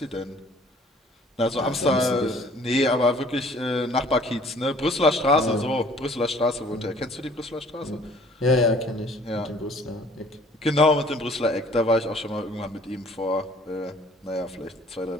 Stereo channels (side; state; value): both; normal; correlation 0.55